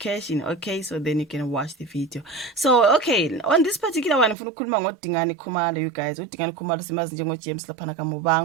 Okay, so then you can watch the video. So okay, on this particular one ngifuna ukukhuluma ngoDingani Khumalo, you guys. uDingani Khumalo simazi njengo James laphana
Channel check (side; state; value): left; drops out; at 4.4 s